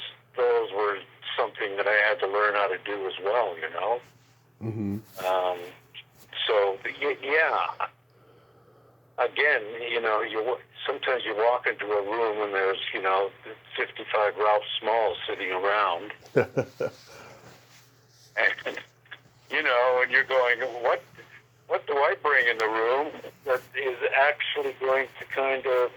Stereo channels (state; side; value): identical; both; correlation 1.00